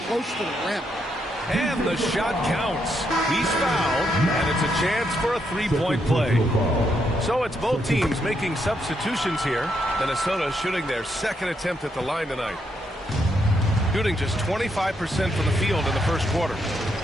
close to the rim. And the shot counts. He's fouled, and it's a chance for a 3-point play. So it's both teams making substitutions here. Minnesota shooting their second attempt at the line tonight. Shooting just 25% from the field in the first quarter.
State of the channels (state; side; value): normal; both; correlation 0.78